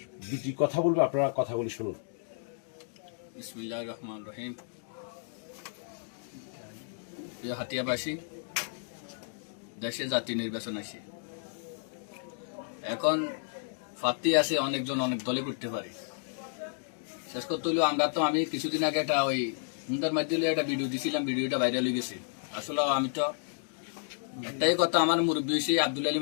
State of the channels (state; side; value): silent; right; digital silence